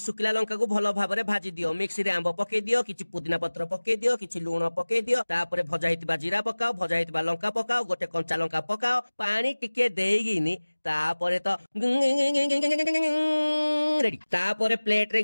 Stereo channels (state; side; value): inverted; both; correlation -1.00